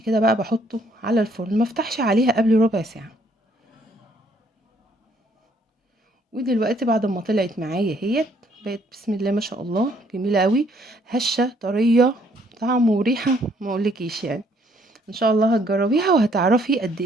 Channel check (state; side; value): normal; both; correlation 0.66